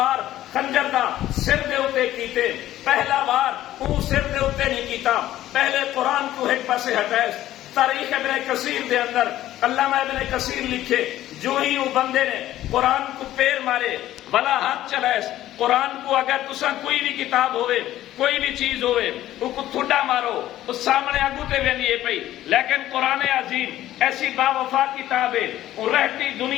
خنجر دا سر دے اتے کیتے، پہلا وار اون سر دے اتے نہیں کیتا، پہلے قرآن کو ایک پاسے ہٹائے۔ تاریخ ابن کثیر دے اندر علامہ ابن کثیر لکھے جو ہی وہ بندے نے قرآن کو پیر مارے بلا ہاتھ چلائے، قرآن کو اگر تساں کوئی بھی کتاب ہوئے کوئی بھی چیز ہوئے وہ کو تھوڑا مارو اس سامنے آگو تے وینی پئی، لیکن قرآن عظیم ایسی با وفا کتاب ہے وہ رہتی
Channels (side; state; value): right; quieter; 13.8 dB